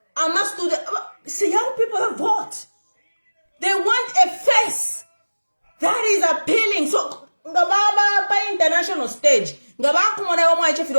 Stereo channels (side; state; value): both; inverted; correlation -1.00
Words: see young people that vote. They want a face that is appealing. So ngababa pa international stage ngaba kumona wa mwache